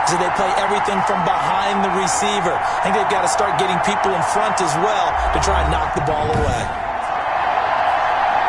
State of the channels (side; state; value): both; identical; correlation 1.00